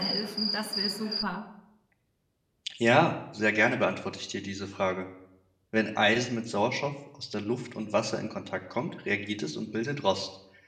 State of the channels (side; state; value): both; identical; correlation 1.00